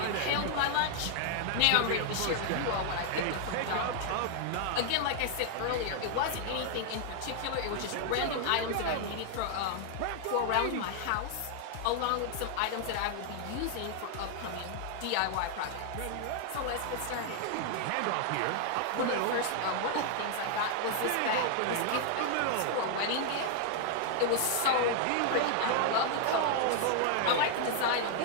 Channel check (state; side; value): different; both; correlation 0.00